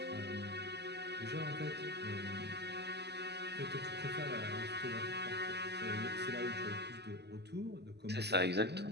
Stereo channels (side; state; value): left; late; 0.49 ms